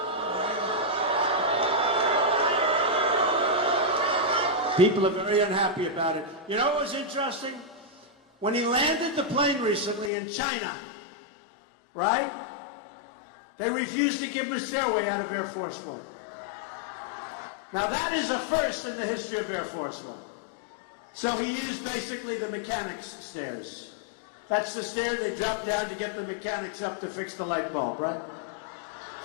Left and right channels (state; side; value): drops out; right; at 10.1 s